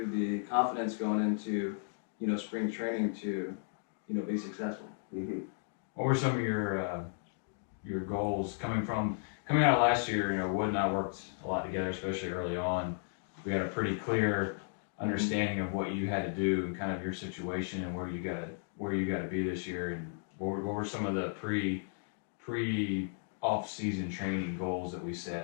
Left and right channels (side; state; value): right; silent; digital silence